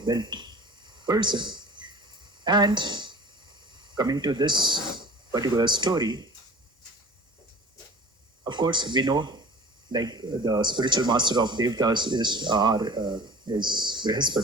built person. And coming to this particular story, of course, we know like the spiritual master of Devtas is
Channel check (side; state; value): both; normal; correlation 0.40